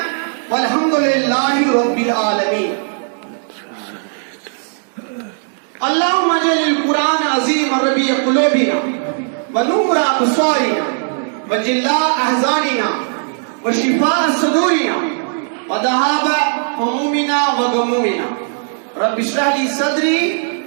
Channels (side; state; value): left; silent; digital silence